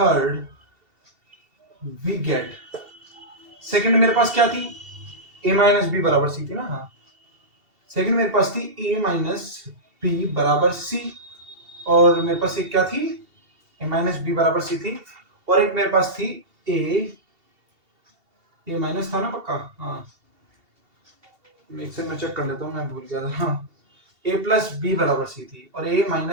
we get. Second मेरे पास क्या थी, a माइनस बी बराबर सी थी ना। हाँ, सेकेंड मेरे पास थी a माइनस बी बराबर सी, और मेरे पास एक क्या थी, a माइनस बी बराबर सी थी, और एक मेरे पास थी a माइनस था ना पक्का। हाँ, एक से मैं चेक कर लेता हूँ, मैं भूल गया था। हाँ, a प्लस बी बराबर सी थी, और a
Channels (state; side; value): late; left; 2.7 ms